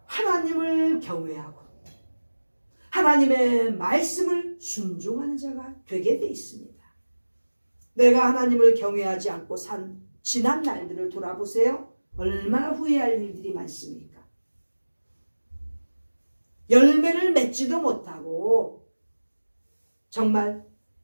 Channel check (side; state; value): both; inverted; correlation -1.00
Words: 하나님을 경외하고 하나님의 말씀을 순종하는 자가 되게 돼 있습니다. 내가 하나님을 경외하지 않고 산 지난 날들을 돌아보세요. 얼마나 후회할 일들이 많습니까? 열매를 맺지도 못하고 정말